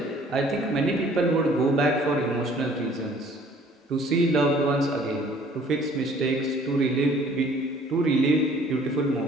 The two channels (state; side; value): normal; both; correlation 0.55